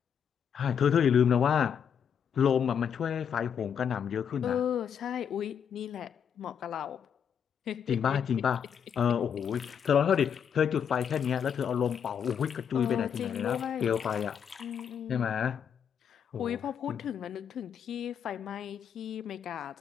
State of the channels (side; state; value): right; quieter; 7.9 dB